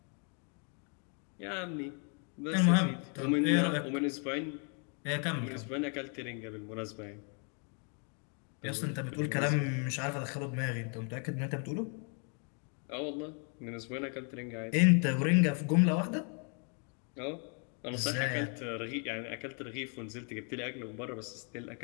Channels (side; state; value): right; quieter; 39.7 dB